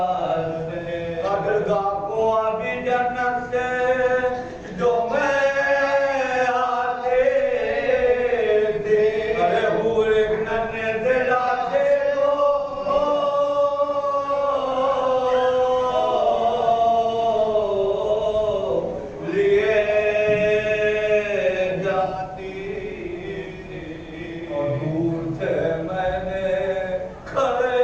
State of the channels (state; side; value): identical; both; correlation 1.00